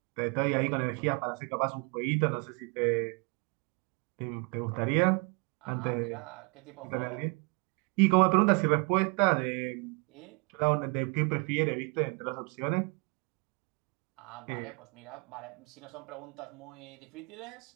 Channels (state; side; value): quieter; left; 32.6 dB